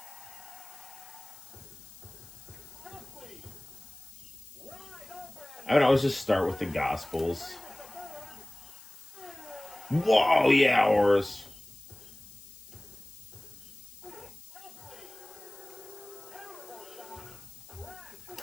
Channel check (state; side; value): noise; left; hiss, 18 dB below the sound